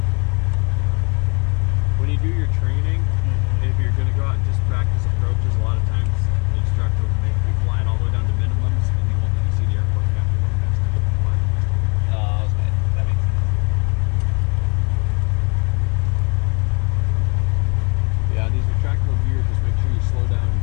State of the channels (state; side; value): quieter; right; 32.6 dB